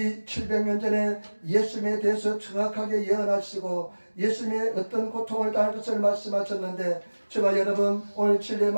700년 전에 예수님에 대해서 정확하게 예언하시고 예수님의 어떤 고통을 당할 것을 말씀하셨는데 저와 여러분 오늘 진리의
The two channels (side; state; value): both; inverted; correlation -1.00